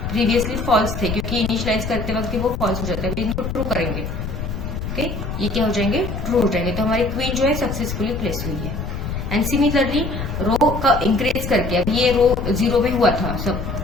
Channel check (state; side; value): noise; left; rumble, 5 dB below the sound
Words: प्रीवियसली फॉल्स थे क्योंकि इनिशियलाइज करते वक्त वो फॉल्स हो जाता है, इनको ट्रू करेंगे, ओके, ये क्या हो जाएंगे, ट्रू हो जाएंगे, तो हमारी क्वीन जो है सक्सेसफुली प्लेस हुई है। एंड सिमिलरली रो का इंक्रीज करके, अब ये रो 0 में हुआ था सब,